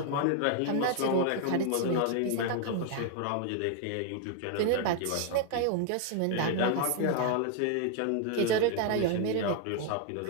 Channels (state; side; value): different; both; correlation 0.00